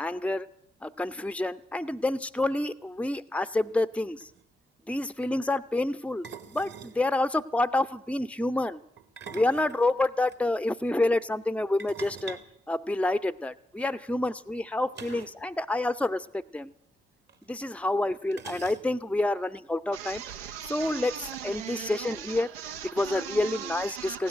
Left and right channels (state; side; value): normal; both; correlation 0.87